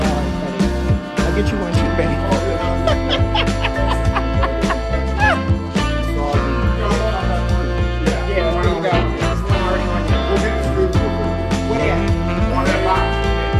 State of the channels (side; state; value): both; identical; correlation 1.00